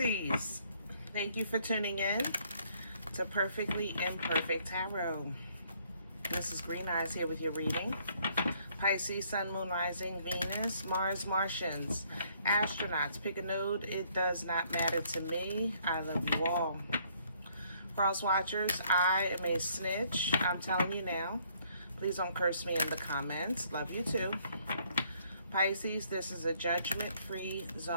thank you for tuning in to Perfectly Imperfect Tarot. This is Green Eyes here with your reading. Pisces, Sun, Moon, Rising, Venus, Mars, Martians, astronauts. Pick a node. It does not matter to me. I love you all. Cross watchers, I am a snitch. I'm telling you now. Please don't curse me in the comments. Love you too. Pisces, this is a judgment-free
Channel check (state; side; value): inverted; both; correlation -0.65